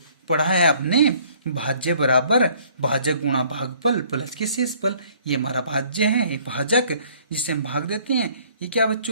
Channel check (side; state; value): both; inverted; correlation -0.58